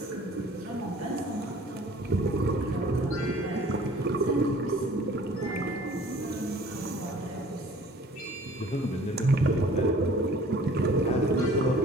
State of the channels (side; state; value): both; normal; correlation 0.50